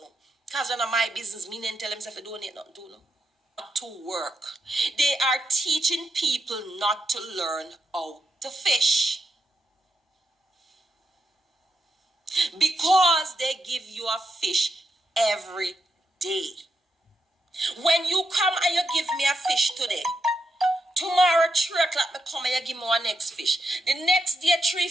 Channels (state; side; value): normal; both; correlation 0.83